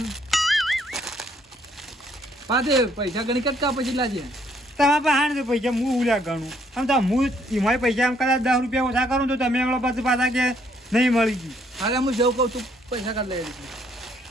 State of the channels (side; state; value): both; normal; correlation 0.67